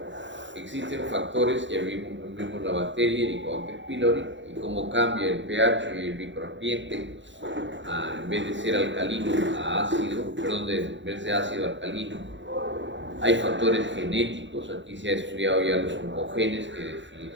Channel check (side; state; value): left; late; 0.54 ms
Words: Existen factores, ya vimos la bacteria, el Helicobacter pylori, y cómo cambia el pH y el microambiente, en vez de ser alcalino a ácido, en vez de ácido a alcalino. Hay factores genéticos, aquí se ha estudiado ya los oncogenes, que